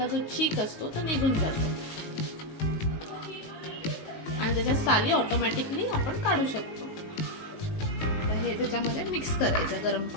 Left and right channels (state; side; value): late; right; 19 ms